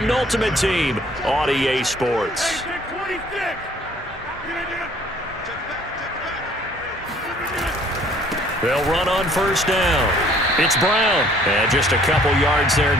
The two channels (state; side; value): normal; both; correlation 0.58